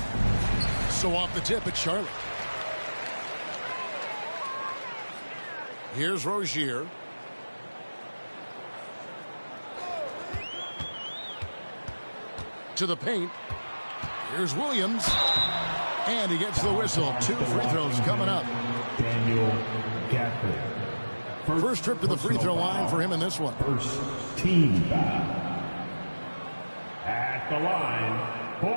So off the tip at Charlotte. Here's Rozier. To the paint. Here's Williams. And he gets the whistle. 2 free throws coming up. Daniel Gafford. First trip to the free throw line for him in this one. First team foul. At the line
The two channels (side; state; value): both; inverted; correlation -1.00